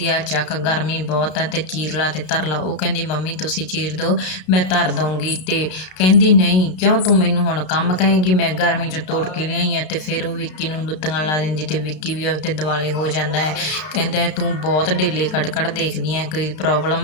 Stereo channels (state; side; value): late; right; 33 ms